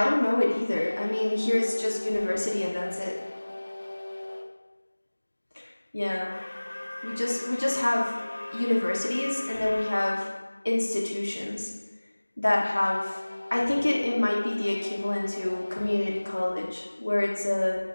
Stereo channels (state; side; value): inverted; both; correlation -1.00